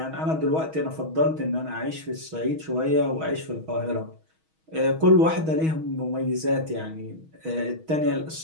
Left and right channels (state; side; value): late; left; 6.3 ms